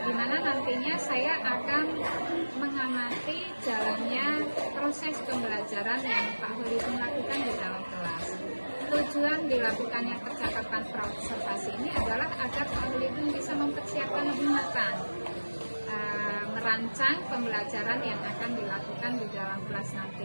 Di mana nantinya saya akan mengamati jalannya proses pembelajaran yang Pak Holidun lakukan di dalam kelas. Tujuan dilakukannya percakapan praobservasi ini adalah agar Pak Holidun bisa mempersiapkan lebih matang merancang pembelajaran yang akan dilakukan di dalam kelas nanti.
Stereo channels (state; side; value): inverted; both; correlation -1.00